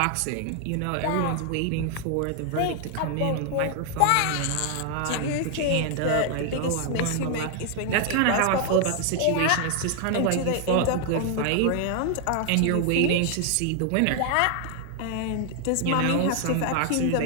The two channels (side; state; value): both; different; correlation 0.00